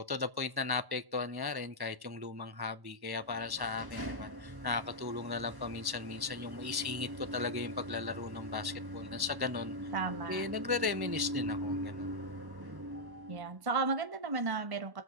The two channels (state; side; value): late; left; 1.1 ms